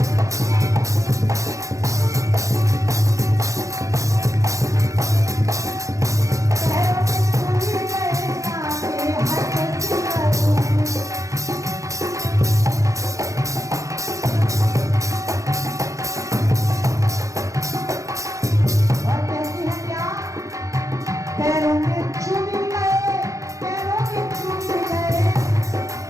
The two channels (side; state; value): left; late; 0.15 ms